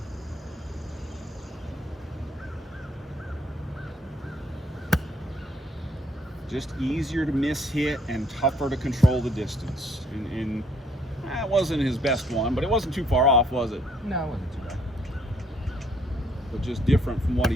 Just easier to miss hit and tougher to control the distance. And that wasn't his best one, but it wasn't too far off, was it? No, it wasn't too bad. But just different from what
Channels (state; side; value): normal; both; correlation 0.67